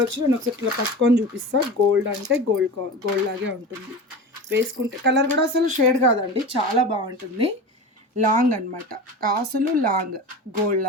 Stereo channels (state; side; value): normal; both; correlation 0.30